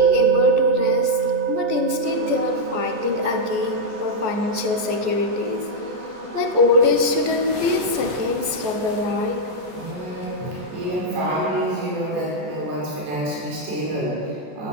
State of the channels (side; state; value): left; late; 14 ms